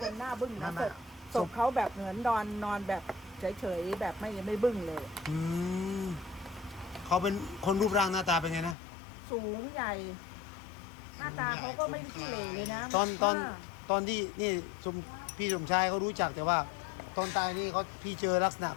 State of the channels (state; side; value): drops out; right; at 8.8 s